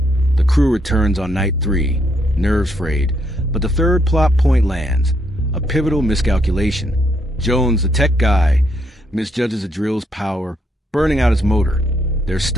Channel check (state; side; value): normal; both; correlation 0.74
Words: The crew returns on night 3, nerves frayed, but the third plot point lands, a pivotal miscalculation. Jones, the tech guy, misjudges the drill's power, burning out his motor. They're